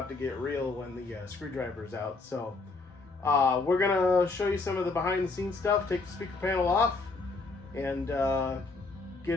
to get real when the screwdriver's out. So we're gonna show you some of the behind the scenes stuff, take the speaker panel off, and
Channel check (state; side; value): quieter; right; 3.7 dB